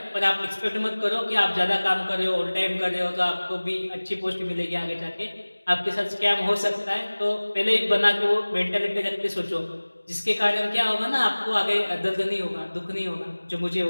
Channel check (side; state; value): both; inverted; correlation -1.00